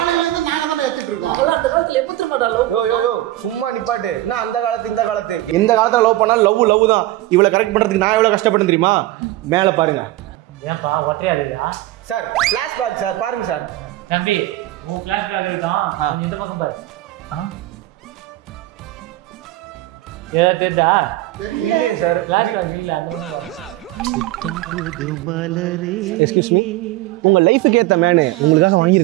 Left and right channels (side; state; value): left; quieter; 16.3 dB